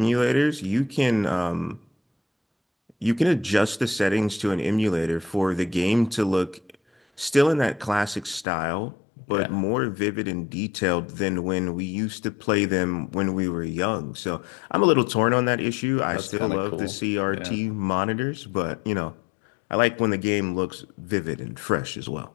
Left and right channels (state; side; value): drops out; right; at 8.5 s